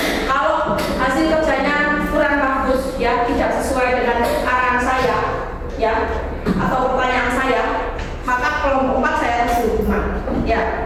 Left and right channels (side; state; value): both; identical; correlation 1.00